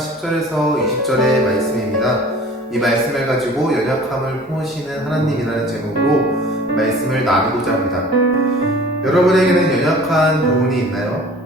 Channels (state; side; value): normal; both; correlation 0.45